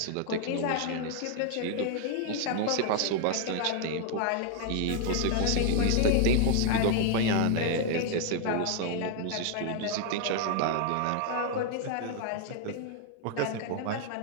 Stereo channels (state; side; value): different; both; correlation 0.00